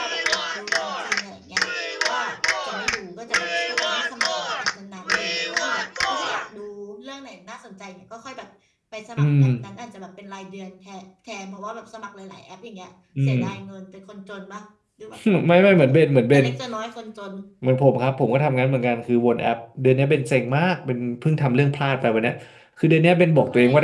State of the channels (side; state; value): both; identical; correlation 1.00